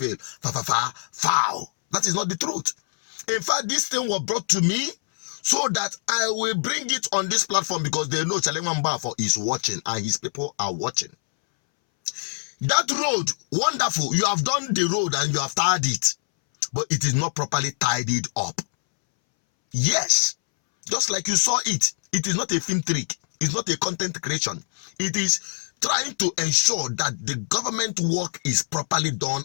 Foul. That is not the truth. In fact, this thing was brought to me so that I will bring it on this platform because they know Chalemamba is watching and his people are watching. That road, wonderful. You have done the road and you have tied it, but it is not properly tidied up. Yes, just like you saw it. It is not a film trick. It's not a content creation. It is trying to ensure that the government work is properly done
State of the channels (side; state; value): right; silent; 62 dB below the other